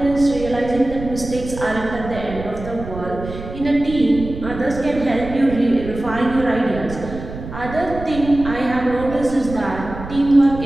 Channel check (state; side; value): noise; right; rumble, 11 dB below the sound